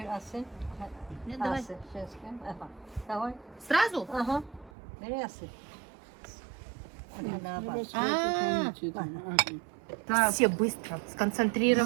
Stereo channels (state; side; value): drops out; left; at 4.7 s